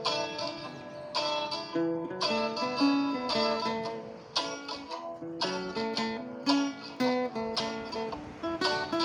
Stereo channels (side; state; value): both; identical; correlation 1.00